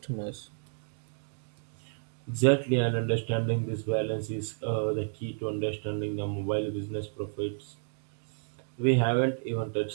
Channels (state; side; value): silent; left; 57 dB below the other